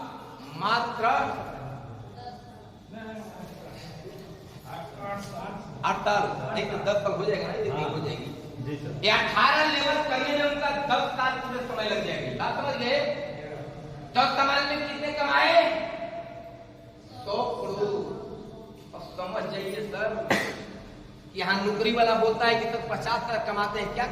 मात्र 8 साल, नहीं तो 10 साल हो जाएगा ना, ये हो जाएगी। 18 लेवल करने में उनका 10 साल पूरे समय लग जाएगी। बात समझ गए? 10 साल में कितने कमाए? 100 करोड़। और समझ जाइए सर, यहाँ नौकरी वाला बोलता है कि तो 50 साल कमाते हैं, क्या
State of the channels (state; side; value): identical; both; correlation 1.00